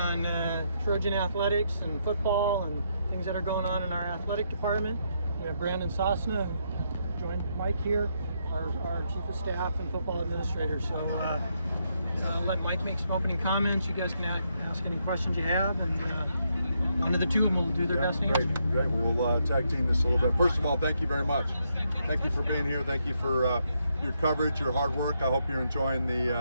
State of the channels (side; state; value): both; inverted; correlation -0.78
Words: Trojan athletics and football and things that are going on in our athletic department. We have Brandon Sosna, joined Mike here, our chief of staff and football administrator. So I'll let Mike make some opening comments. You guys can ask any questions you have, and one of the two of them will do their best to answer. Great. We'll tag team this a little bit. First of all, thank you very much. Thank you for being here. Thank you for your coverage, your hard work. I hope you're enjoying